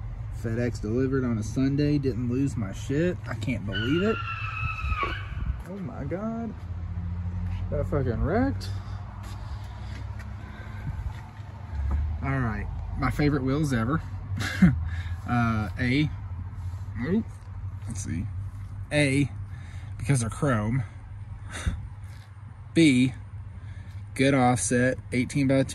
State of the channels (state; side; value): identical; both; correlation 1.00